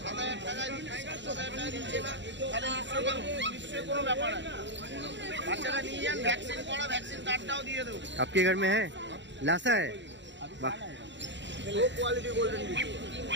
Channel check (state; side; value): late; left; 0.53 ms